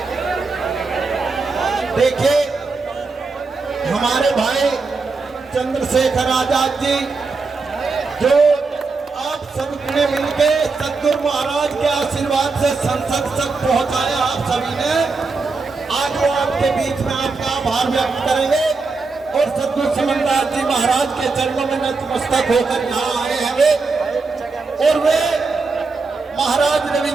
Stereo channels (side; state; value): left; quieter; 4.2 dB